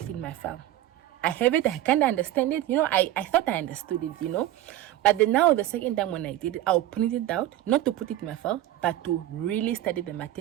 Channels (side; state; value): left; quieter; 13.9 dB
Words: it in my file. I have it, I kind of understand it, I thought I understood it, but then now the second time when I did it, I'll print it out, not to put it in my file, but to really study the